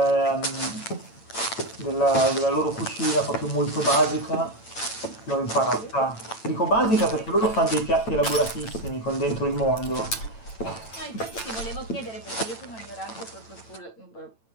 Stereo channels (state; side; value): late; right; 8.9 ms